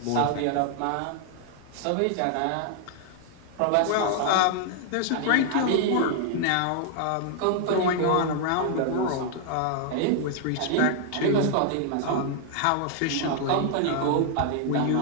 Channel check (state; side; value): different; both; correlation 0.00